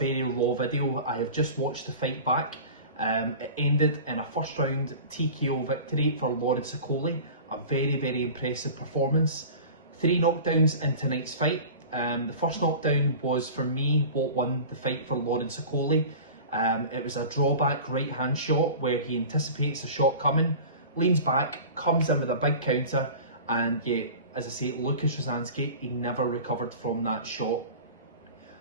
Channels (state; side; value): inverted; both; correlation -0.37